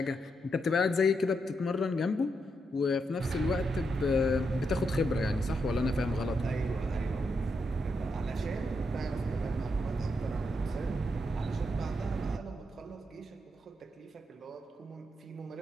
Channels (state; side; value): normal; both; correlation 0.82